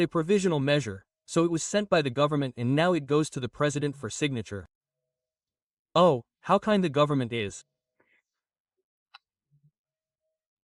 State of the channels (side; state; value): both; identical; correlation 1.00